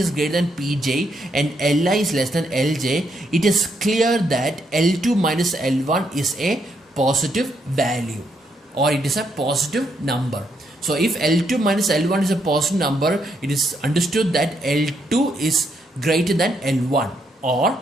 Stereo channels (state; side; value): normal; both; correlation 0.77